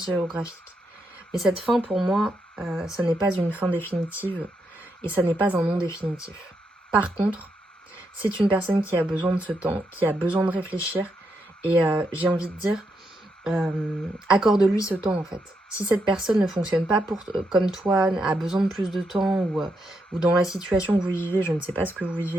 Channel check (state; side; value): normal; both; correlation 0.81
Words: géographique. Mais cette fin, pour moi, ça n'est pas une fin définitive et ça n'est pas un non définitif. Par contre, c'est une personne qui a besoin de ce temps, qui a besoin de réfléchir. Et j'ai envie de dire, accorde-lui ce temps en fait. Si cette personne ne fonctionne pas comme toi, a besoin de plus de temps ou dans la situation que vous vivez, je ne sais pas ce que vous vivez